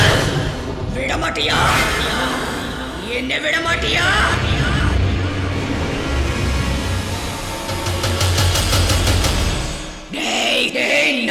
విడమటియా, என்ன விடமாட்டியா?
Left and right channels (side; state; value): both; identical; correlation 1.00